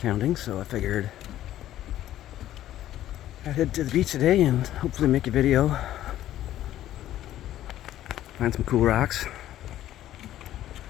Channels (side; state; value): right; quieter; 13.0 dB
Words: so I figured I'd head to the beach today and hopefully make a video. Find some cool rocks.